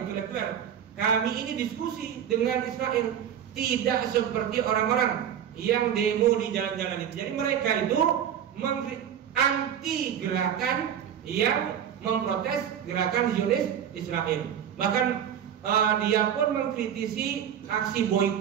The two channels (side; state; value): left; quieter; 9.2 dB